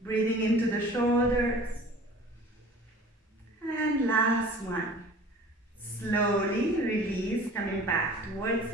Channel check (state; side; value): normal; both; correlation 0.45